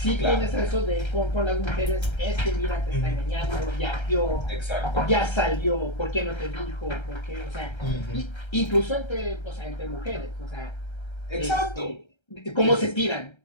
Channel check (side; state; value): right; late; 1.3 ms